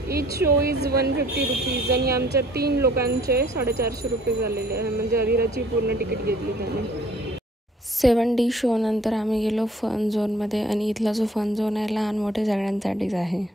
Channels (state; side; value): normal; both; correlation 0.57